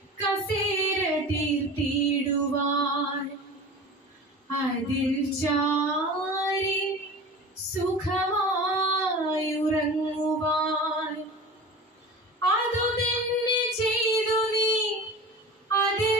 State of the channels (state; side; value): normal; both; correlation 0.35